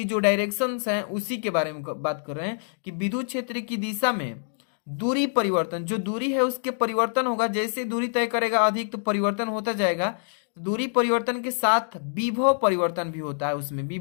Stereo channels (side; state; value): right; silent; digital silence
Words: जो डायरेक्शंस हैं उसी के बारे में बात कर रहे हैं कि विद्युत क्षेत्र की दिशा में दूरी परिवर्तन, जो दूरी है उसके परिवर्तन होगा, जैसे दूरी तय करेगा अधिक तो परिवर्तन होता जाएगा। दूरी परिवर्तन के साथ विभव परिवर्तन भी होता है, उसमें